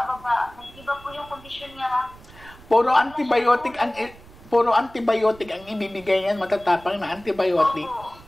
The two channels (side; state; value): right; noise; rumble, 22 dB below the sound